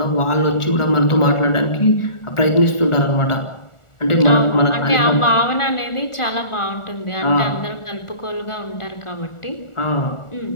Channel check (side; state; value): right; late; 1.4 ms